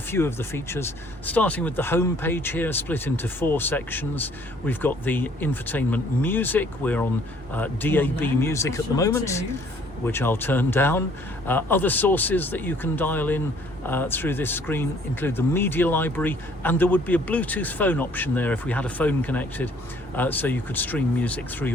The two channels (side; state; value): both; normal; correlation 0.59